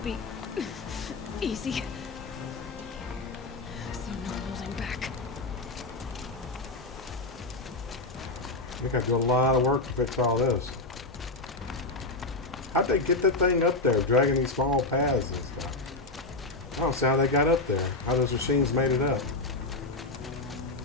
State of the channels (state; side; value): quieter; right; 3.1 dB